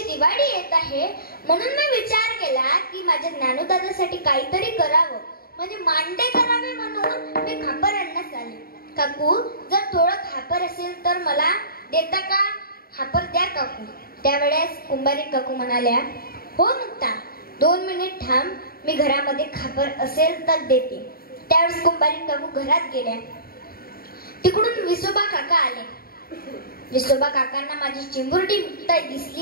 दिवाळी येत आहे म्हणून मी विचार केला की माझ्या ज्ञानोदादासाठी काहीतरी करावं, म्हणजे मांडे करावे म्हणून मी खापर आणण्यास आले. काकू, जर थोडं खापर असेल तर मला देता का? खापर द्या काकू. त्यावेळेस कुंभारी काकू म्हणाल्या, हो मुक्ता, 2 मिनिट थांब, मी घरामध्ये खापर असेल तर देते. त्यावेळेस कुंभारी काकू घरात गेल्या. तिकडून विसोबा काका आले. विसोबा काकांना माझी चिमुरडी मुक्ताई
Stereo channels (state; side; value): late; right; 0.43 ms